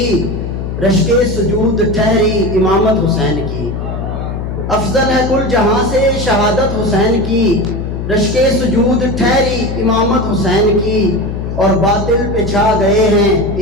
رشک سجود ٹھہری امامت حسین کی، افضل ہے کل جہاں سے شہادت حسین کی، رشک سجود ٹھہری امامت حسین کی، اور باطل پہ چھا گئے ہیں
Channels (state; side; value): noise; left; hum, 5 dB below the sound